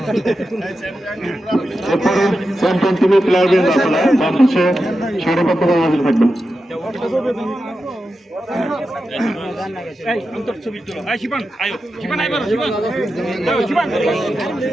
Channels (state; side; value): normal; both; correlation 0.90